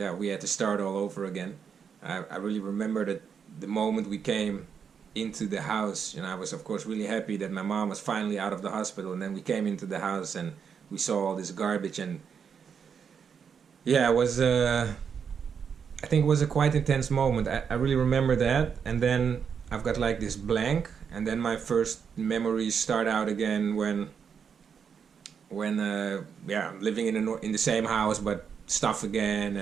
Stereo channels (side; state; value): left; quieter; 6.9 dB